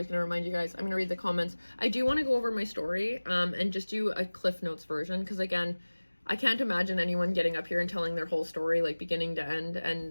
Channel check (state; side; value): inverted; both; correlation -1.00